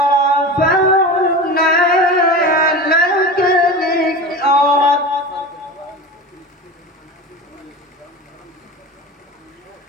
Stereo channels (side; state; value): both; normal; correlation 0.30